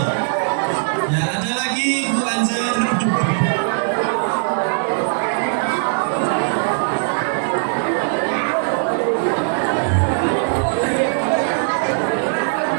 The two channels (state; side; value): silent; left; digital silence